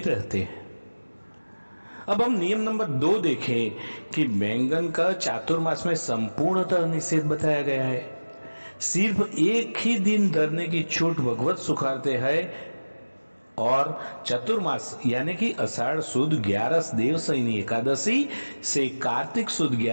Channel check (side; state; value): both; inverted; correlation -1.00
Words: रहते। अब हम नियम नंबर 2 देखें कि बैंगन का चातुर्मास में संपूर्णतः निषेध बताया गया है। सिर्फ एक ही दिन धरने की छूट भगवत सुखारते हैं, और चतुर्मास यानी कि आषाढ़ सुद 11 देवशयनी एकादशी से कार्तिक सुद